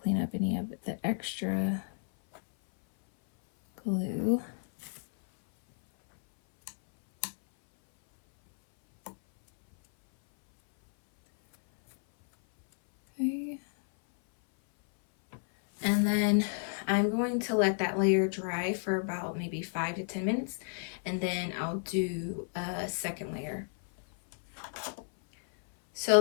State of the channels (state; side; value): silent; right; 57 dB below the other